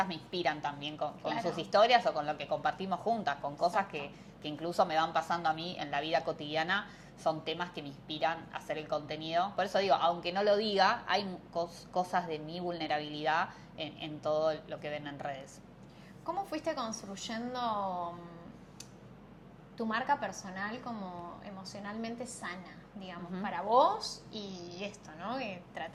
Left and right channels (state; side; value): identical; both; correlation 1.00